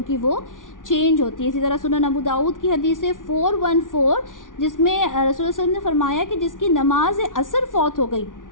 کی وہ چینج ہوتی ہے۔ اسی طرح سنن ابو داؤد کی حدیث ہے 414، جس میں رسول اللہ صلی اللہ علیہ وسلم نے فرمایا کہ جس کی نماز عصر فوت ہو گئی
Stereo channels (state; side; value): late; right; 0.88 ms